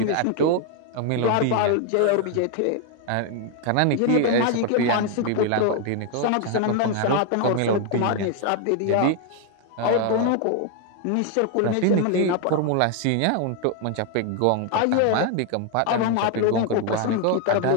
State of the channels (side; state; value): both; different; correlation 0.01